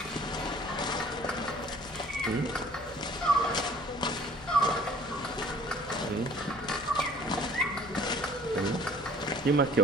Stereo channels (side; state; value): left; noise; hum, 20 dB below the sound